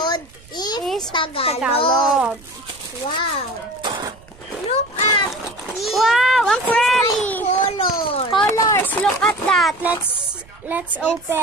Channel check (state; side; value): noise; right; rumble, 24 dB below the sound